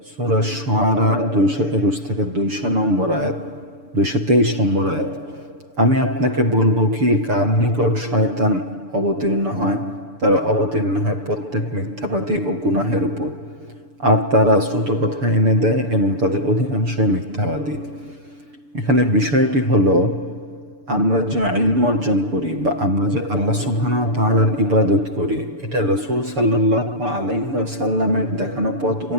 সূরা শুআরার 221 থেকে 200 নম্বর আয়াত, 223 নম্বর আয়াত, আমি আপনাকে বলবো কি কার নিকট শয়তান অবতীর্ণ হয়? তারা অবতীর্ণ হয় প্রত্যেক মিথ্যাবাদী ও গুনাহের উপর। আর তারা শ্রুত কথা এনে দেয় এবং তাদের অধিকাংশই মিথ্যাবাদী। এখানে বিষয়টি হলো, আমরা যে ইলম অর্জন করি বা আমরা যে আল্লাহ সুবহানাহু ওয়া তাআলার ইবাদত করি, এটা রাসূল সাল্লাল্লাহু আলাইহি ওয়াসাল্লামের দেখানো পথ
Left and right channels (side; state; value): left; late; 6.9 ms